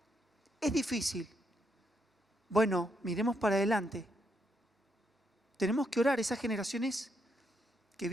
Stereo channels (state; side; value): normal; both; correlation 0.78